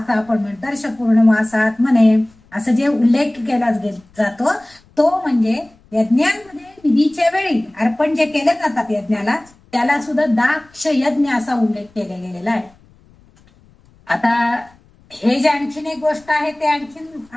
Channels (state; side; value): noise; left; rumble, 30 dB below the sound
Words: आपण म्हणतो, दर्श पूर्णमासात म्हणे असं जे उल्लेख केला जातो तो म्हणजे यज्ञांमध्ये विधीच्या वेळी अर्पण जे केले जातात यज्ञाला त्याला सुद्धा दाक्ष यज्ञ असा उल्लेख केला गेलेला आहे. आता हे जे आणखीन एक गोष्ट आहे ते